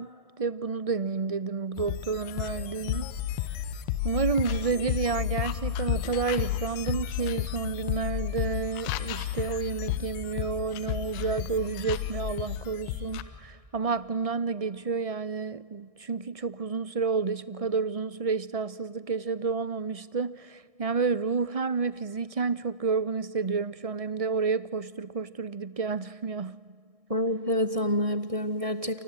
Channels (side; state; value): left; late; 1.6 ms